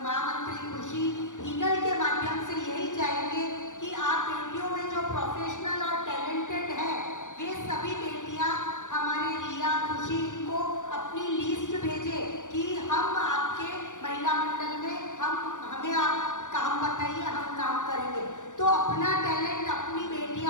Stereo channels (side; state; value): right; late; 0.87 ms